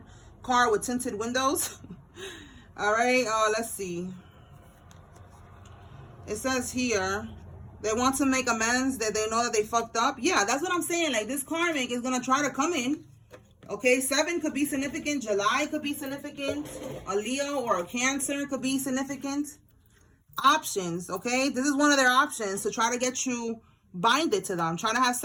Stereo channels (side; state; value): both; identical; correlation 1.00